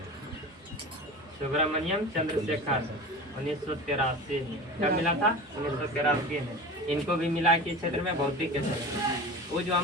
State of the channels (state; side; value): normal; both; correlation 0.33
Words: सुब्रमण्यम चंद्रशेखर 1983 में। कब मिला था? 1983 में। इनको भी मिला कि क्षेत्र में भौतिक के क्षेत्र में। वो जो